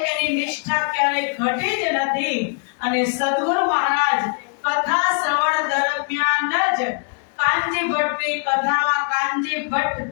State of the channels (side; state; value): right; quieter; 39.7 dB